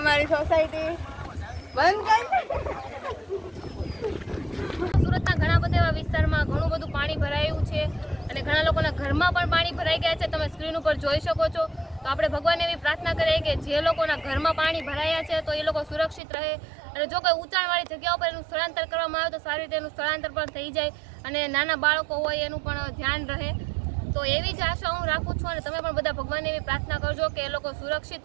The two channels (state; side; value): drops out; left; at 16.2 s